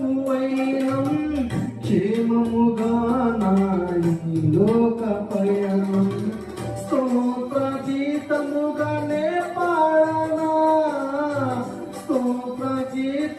వైనం, క్షేమముగా నాయి లోక పయనం. స్తోత్ర గీతముగానే పాడనా, స్తోత్ర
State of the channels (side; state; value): both; identical; correlation 1.00